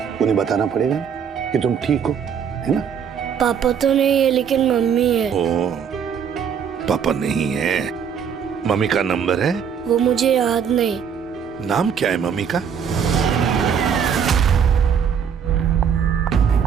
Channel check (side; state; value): left; quieter; 7.4 dB